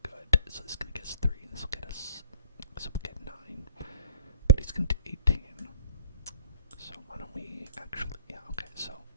he's gonna do 18. So why don't we actually, yeah, okay, so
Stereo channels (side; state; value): both; inverted; correlation -0.49